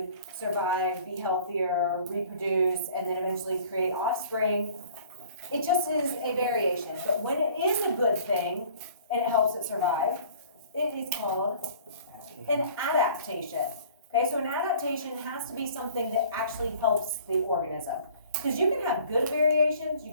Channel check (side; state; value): both; inverted; correlation -0.50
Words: survive, be healthier, reproduce, and then eventually create offspring, it just is a variation. But when it is a good thing and it helps it survive, it is called an adaptation. Okay, so an adaptation has to be something that actually helps the organism. Because you can have good variations, you